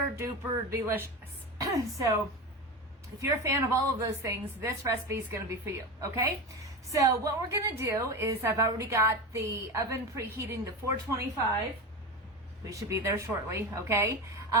duper delicious. So if you're a fan of all of those things, this recipe is gonna be for you, okay? So what we're gonna do is I've already got the oven preheating to 425. We should be there shortly, okay?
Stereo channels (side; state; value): both; normal; correlation 0.23